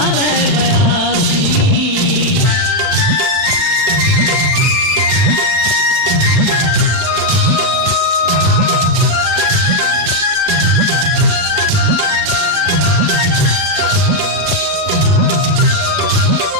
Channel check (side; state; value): left; late; 39 ms